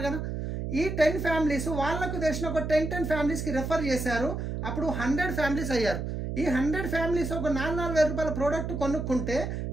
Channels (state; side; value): noise; right; hum, 4 dB below the sound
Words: కదా. ఈ 10 ఫ్యామిలీస్ వాళ్ళకు తెలిసిన ఒక 10 ఫ్యామిలీస్కి రెఫర్ చేశారు, అప్పుడు 100 ఫ్యామిలీస్ అయ్యారు. ఈ 100 ఫ్యామిలీస్ ఒక 4,000 రూపాయల ప్రోడక్ట్ కొనుక్కుంటే